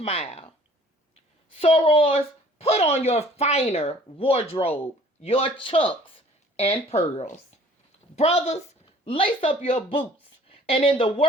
Sorors, put on your finer wardrobe, your chucks and pearls. Brothers, lace up your boots, and in the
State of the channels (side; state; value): both; normal; correlation 0.54